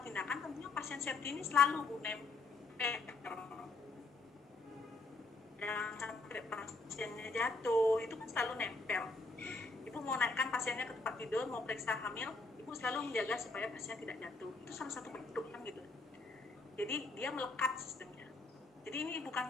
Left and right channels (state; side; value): quieter; right; 3.6 dB